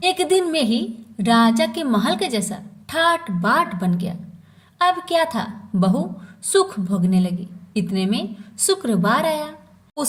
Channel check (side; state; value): both; identical; correlation 1.00